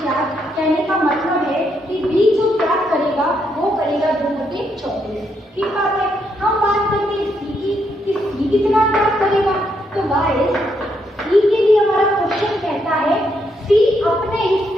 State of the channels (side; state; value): both; normal; correlation 0.77